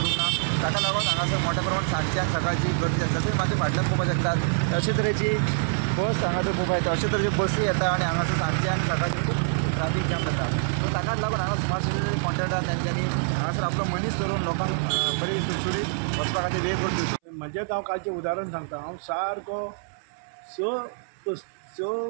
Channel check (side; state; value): left; silent; 61 dB below the other